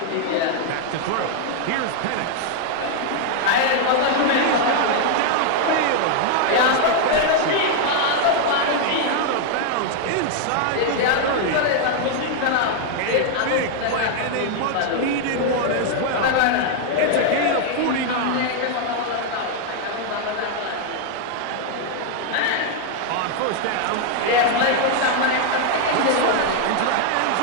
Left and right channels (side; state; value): both; different; correlation 0.00